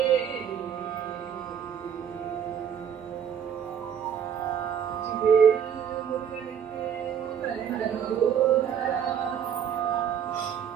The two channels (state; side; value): quieter; left; 8.3 dB